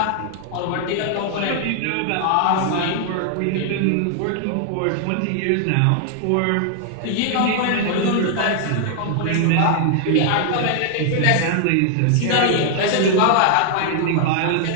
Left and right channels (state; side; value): different; both; correlation 0.00